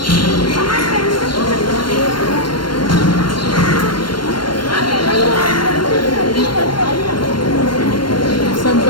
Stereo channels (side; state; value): right; late; 0.72 ms